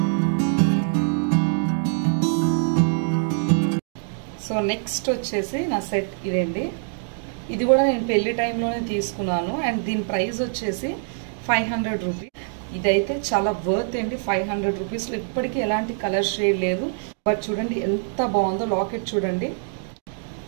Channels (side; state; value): left; silent; digital silence